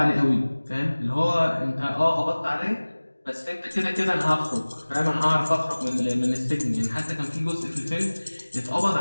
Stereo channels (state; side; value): inverted; both; correlation -1.00